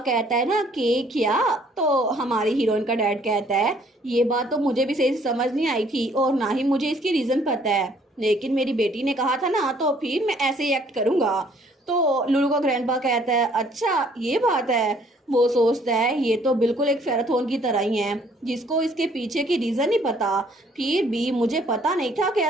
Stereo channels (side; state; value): both; normal; correlation 0.62